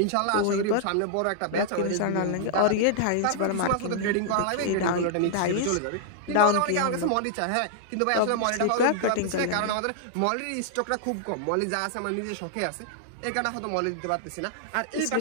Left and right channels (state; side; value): different; both; correlation -0.01